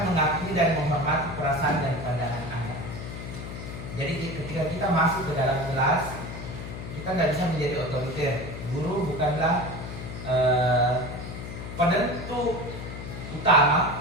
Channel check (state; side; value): noise; left; hum, 9 dB below the sound